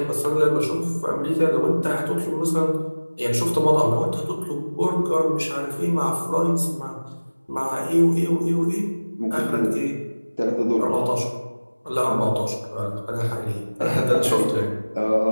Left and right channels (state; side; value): inverted; both; correlation -1.00